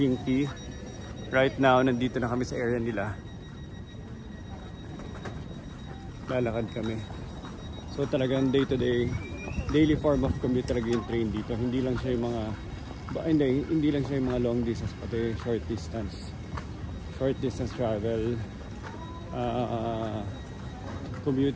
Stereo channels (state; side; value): identical; both; correlation 1.00